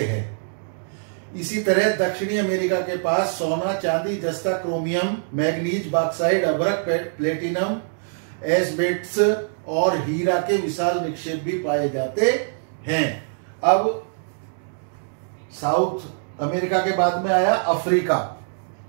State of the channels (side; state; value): left; silent; digital silence